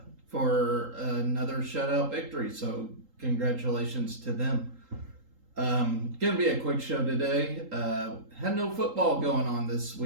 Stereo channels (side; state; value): left; late; 3.8 ms